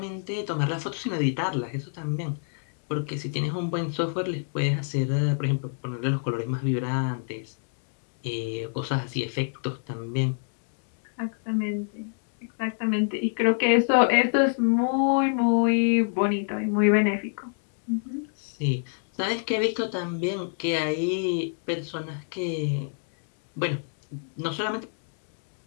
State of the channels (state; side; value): silent; right; digital silence